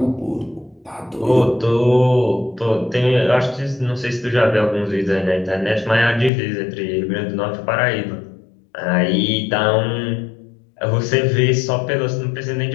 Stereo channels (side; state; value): right; drops out; at 6.3 s